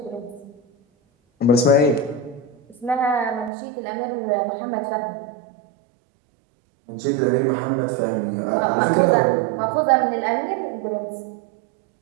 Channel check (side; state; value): left; drops out; at 3.5 s